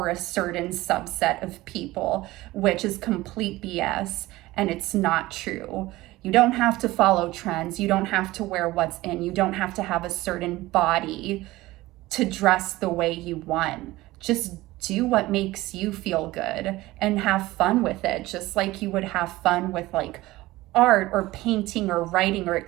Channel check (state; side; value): quieter; left; 18.4 dB